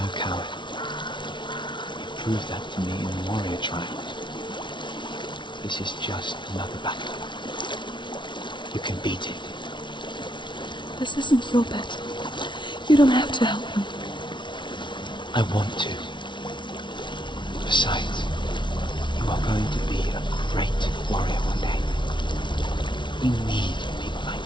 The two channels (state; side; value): late; right; 0.23 ms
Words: coward. You proved that to me in the warrior trial. This is just another battle. You can beat it. This isn't your battle. You don't have to help me. I want to. Besides, you are going to be a great warrior one day. We need people like